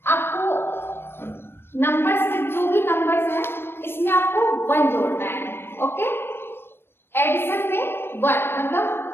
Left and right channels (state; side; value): late; right; 0.11 ms